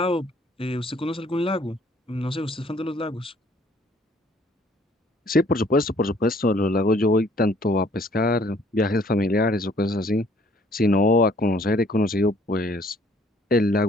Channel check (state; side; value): normal; both; correlation 0.60